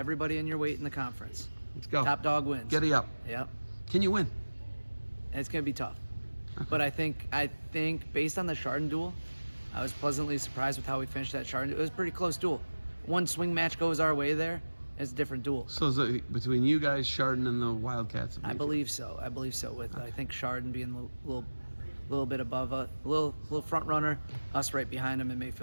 in your weight in the conference. Let's go. Top dog wins. Giddy up. Yep. Can you win? And it's gonna be tough. Okay. But I think based on the Chardon duel, I was pleasantly surprised with how we finished that Chardon. It was a pretty close duel. One swing match goes our way there. It's a different duel. So is it between you guys, Chardon, and the Wildcats? I believe so. With I think Chardon being a little bit above a little front runner, us right behind him, and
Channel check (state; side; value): inverted; both; correlation -1.00